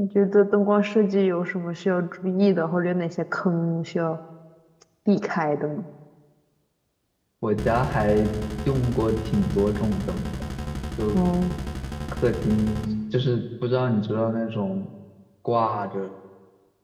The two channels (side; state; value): both; identical; correlation 1.00